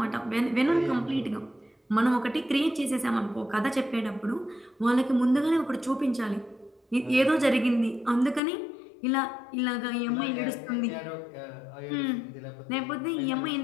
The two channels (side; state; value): right; drops out; at 8.4 s